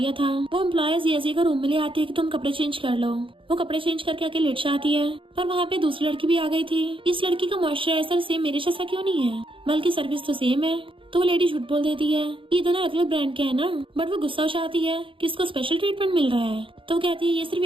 था। वो एम्प्लॉय जिया को रूम में ले आती है कि तुम कपड़े चेंज कर लो। वो कपड़े चेंज करके आके लेट जाती है, पर वहाँ पे दूसरी लड़की भी आ गई थी। इस लड़की का मॉइस्चराइजर सेम मेरे जैसा क्यों नहीं है, बल्कि सर्विस तो सेम है। तो वो लेडी झूठ बोल देती है ये दोनों अलग अलग ब्रांड के है ना। बट वो गुस्सा हो जाती है कि इसको स्पेशल ट्रीटमेंट मिल रहा है। तो वो कहती है ये सिर्फ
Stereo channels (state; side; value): late; left; 0.25 ms